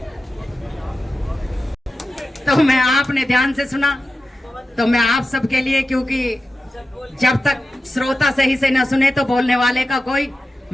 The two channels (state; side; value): normal; both; correlation 0.93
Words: तो मैं, आपने ध्यान से सुना तो मैं आप सबके लिए, क्योंकि जब तक श्रोता सही से न सुने तो बोलने वाले का कोई